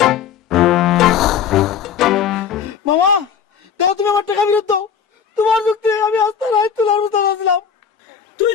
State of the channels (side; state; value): right; quieter; 7.6 dB